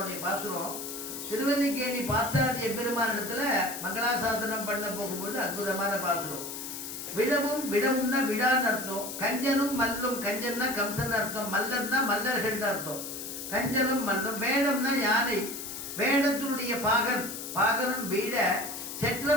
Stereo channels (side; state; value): left; noise; hiss, 8 dB below the sound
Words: பாசுரம் திருவல்லிக்கேணி பாசாதி எம்பெருமான இடத்துல மங்களாசாசனம் பண்ண போகும்போது அற்புதமான பாசுரம். விடவும் விடவும்னா விடான்னு அர்த்தம். கஞ்சனும் மல்லும், கஞ்சன்னா கம்சன் அர்த்தம், மல்லன்னா மல்லர்கள் அர்த்தம். கஞ்சனும் மல்லும். வேடம்னா யானை, வேடத்தினுடைய பாகன், பாகனும் வீட